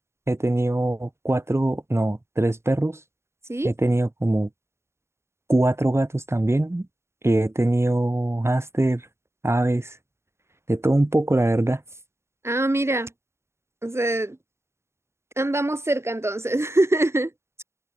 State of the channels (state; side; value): late; left; 0.13 ms